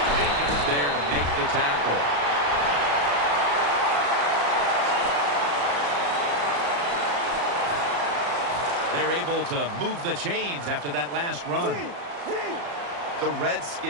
there to make the tackle. They're able to move the chains after that last run. The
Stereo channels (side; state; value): left; late; 35 ms